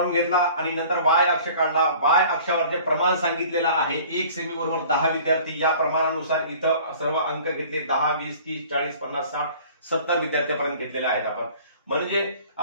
घेतला आणि नंतर वाय अक्ष काढला. वाय अक्षावर जे प्रमाण सांगितलेलं आहे 1 सेमी बरोबर 10 विद्यार्थी, या प्रमाणानुसार इथं सर्व अंक घेतले 10, 20, 30, 40, 50, 60, 70 विद्यार्थ्यापर्यंत घेतलेले आहेत आपण. म्हणजे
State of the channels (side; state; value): both; inverted; correlation -0.48